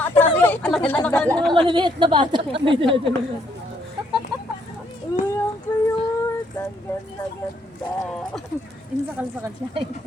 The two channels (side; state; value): both; normal; correlation 0.70